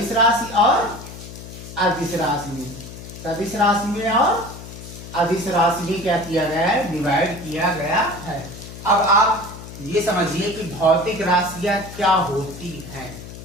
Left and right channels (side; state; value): left; noise; hum, 13 dB below the sound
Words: राशि और अदिश राशि में। सदिश राशि में और अदिश राशि में क्या किया गया है? डिवाइड किया गया है। अब आप ये समझिए कि भौतिक राशियां क्या होती हैं।